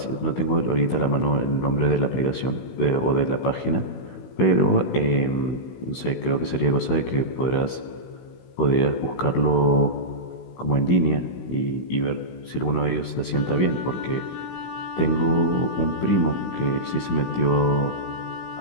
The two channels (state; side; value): late; right; 16 ms